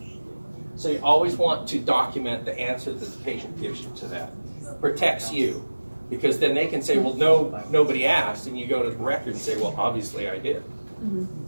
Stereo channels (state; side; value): inverted; both; correlation -1.00